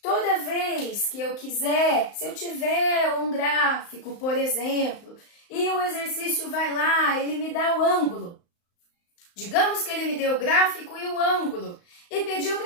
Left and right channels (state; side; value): late; right; 35 ms